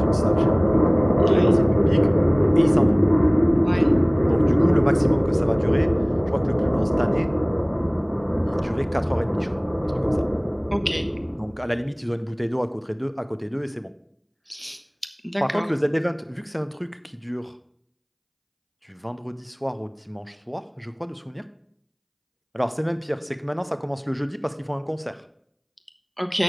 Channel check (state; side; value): identical; both; correlation 1.00